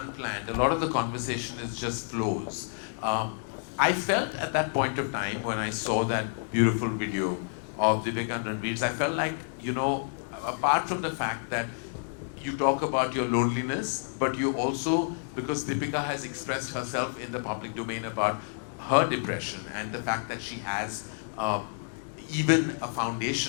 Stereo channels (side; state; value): right; silent; digital silence